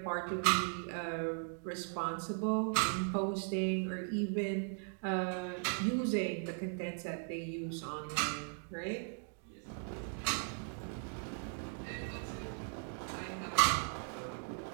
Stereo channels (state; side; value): silent; left; 52 dB below the other